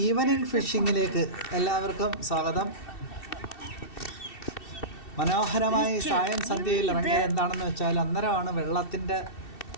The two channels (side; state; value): right; late; 2.7 ms